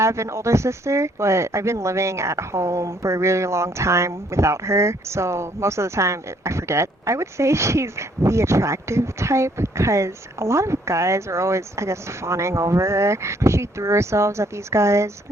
an older sister, but I've been living at home for a really long time without her, so most of the time I forget. I would say she's the attractive type because a lot of guys are always, I guess, fawning over her. She threw herself at these guys.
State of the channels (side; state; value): both; normal; correlation 0.65